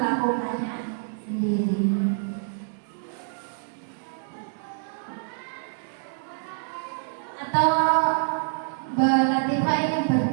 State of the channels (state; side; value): silent; left; digital silence